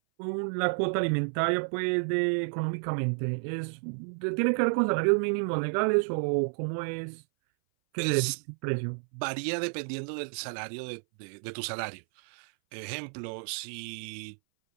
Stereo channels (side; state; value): left; silent; 57 dB below the other